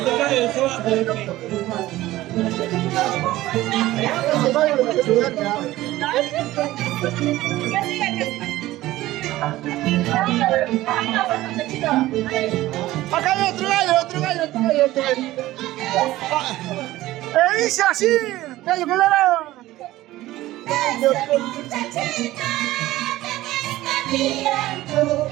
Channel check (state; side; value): quieter; left; 16.4 dB